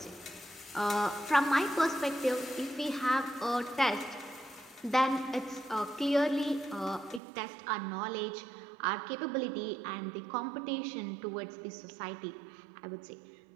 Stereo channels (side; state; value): left; drops out; at 7.2 s